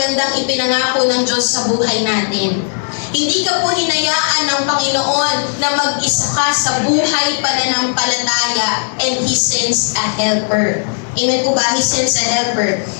ipinangako ng Diyos sa buhay natin. Hindi ka po hinayaan ng Panginoon na mag-isa ka sa buhay pananampalataya, and He sends a helper. Amen po ba? He sends a helper.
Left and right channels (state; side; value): silent; right; digital silence